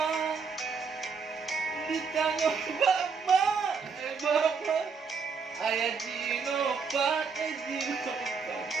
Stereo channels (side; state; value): left; quieter; 5.5 dB